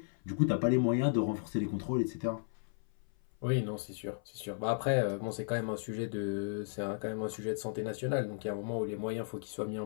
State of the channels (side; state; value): right; silent; 55 dB below the other